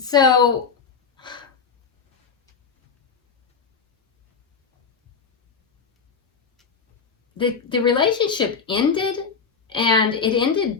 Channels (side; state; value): right; quieter; 5.6 dB